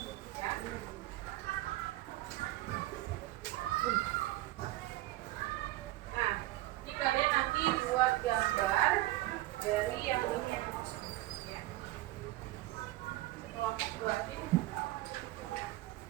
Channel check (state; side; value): quieter; left; 17.4 dB